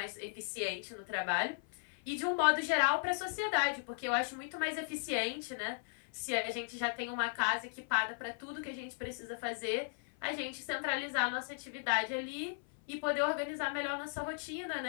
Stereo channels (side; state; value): right; silent; 54 dB below the other